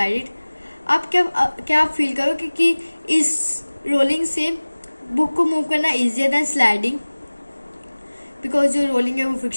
it? आप क्या आप फील करोगे कि इस रोलिंग से बुक को मूव करना ईजियर दैन स्लाइडिंग? बिकॉज जो रोलिंग है वो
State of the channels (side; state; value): both; inverted; correlation -1.00